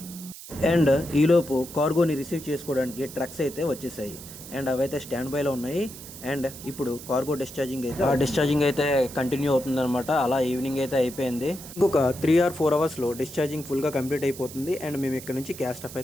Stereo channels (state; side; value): noise; right; hiss, 14 dB below the sound